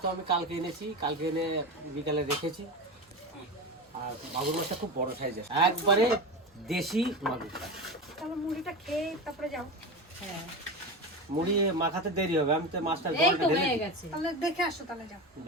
আমি কালকে এনেছি, কালকে এনে বিকালে রেখেছি। আর মাগুর মাছটা খুব বড় সাইজের, একবারে দেশি মাগুর। তাহলে মুড়িটা খেয়ে তারপরে যাও। হ্যাঁ, মুড়ি মাখাতে দেরি হবে, আমি তো মাছটা এই জলটা তো ঢেলে হয়ে দিই। গেছে। তাহলে দেখে আসো, তাহলে যাও।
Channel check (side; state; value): both; normal; correlation 0.23